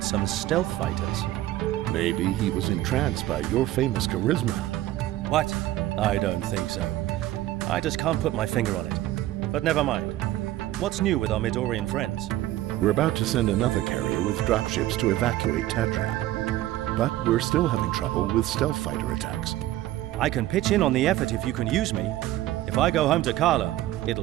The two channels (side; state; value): left; quieter; 15.0 dB